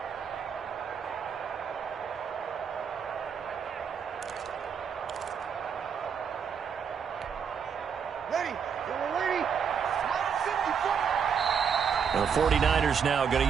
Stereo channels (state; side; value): quieter; left; 7.0 dB